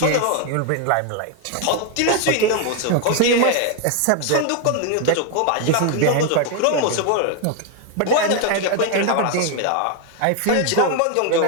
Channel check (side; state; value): both; different; correlation 0.01